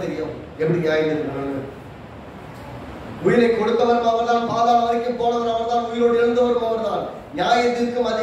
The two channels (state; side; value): identical; both; correlation 1.00